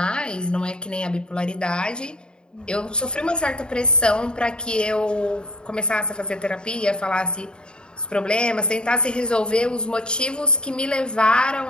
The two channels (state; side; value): late; right; 0.050 ms